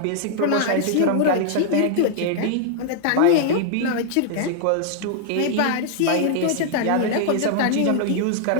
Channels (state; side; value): different; both; correlation -0.01